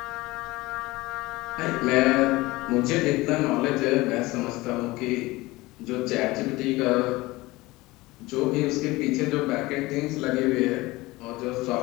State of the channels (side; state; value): right; quieter; 20.5 dB